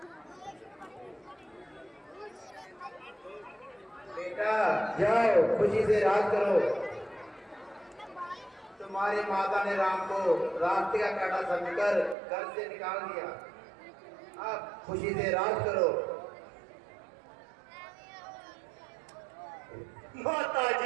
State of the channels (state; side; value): drops out; left; at 12.2 s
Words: बेटा जाओ खुशी से राज करो। तुम्हारी माता ने राम को रास्ते का कांटा समझकर घर से निकाल दिया। अब खुशी से राज करो। माता